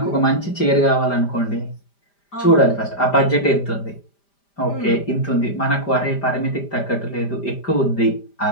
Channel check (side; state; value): right; late; 5.0 ms